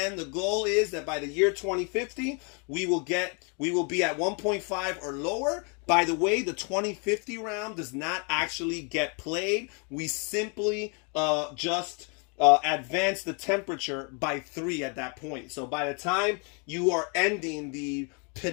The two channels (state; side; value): quieter; right; 35.8 dB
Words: the goal is that by the year 2050, we will be at 1.5 or lower. By the way, the 2050 round does not actually get played. We simply advance the temperature by 3 at that point. So by the time you are ending the